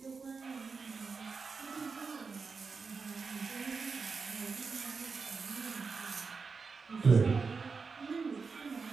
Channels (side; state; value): left; quieter; 4.9 dB